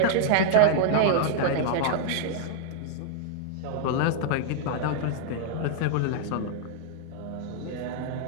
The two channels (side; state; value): both; different; correlation -0.01